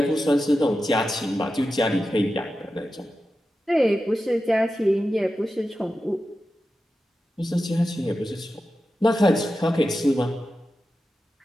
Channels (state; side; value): normal; both; correlation 0.92